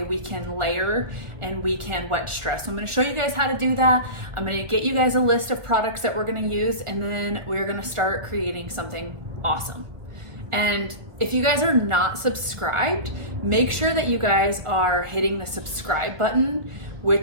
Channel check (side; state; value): left; late; 1.4 ms